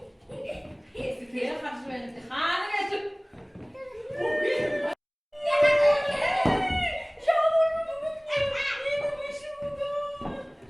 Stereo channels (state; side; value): identical; both; correlation 1.00